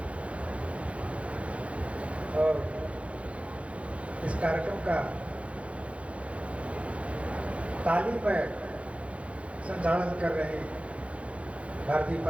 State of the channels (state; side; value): late; left; 0.063 ms